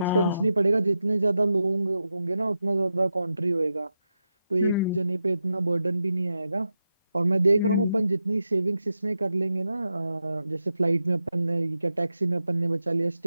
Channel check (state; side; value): inverted; both; correlation -0.88